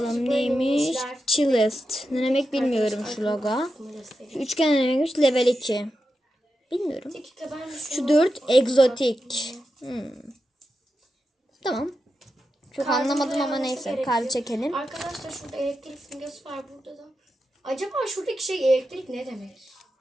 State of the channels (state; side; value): normal; both; correlation 0.89